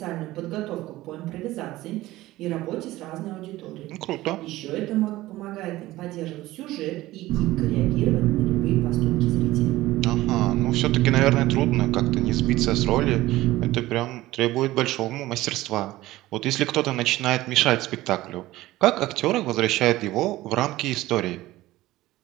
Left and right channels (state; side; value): quieter; left; 17.0 dB